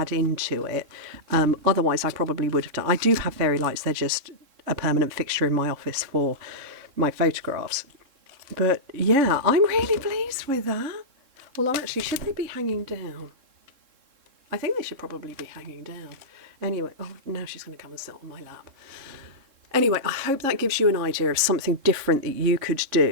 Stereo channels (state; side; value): late; left; 3.6 ms